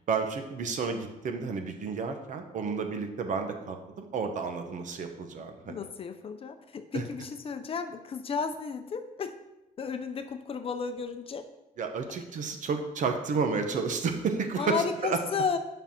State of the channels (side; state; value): both; normal; correlation 0.32